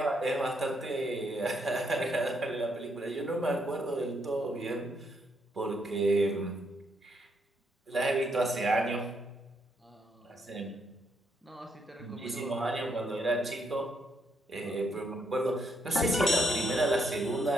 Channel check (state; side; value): normal; both; correlation 0.75